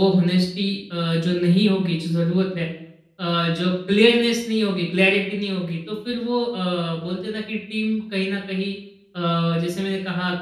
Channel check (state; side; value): identical; both; correlation 1.00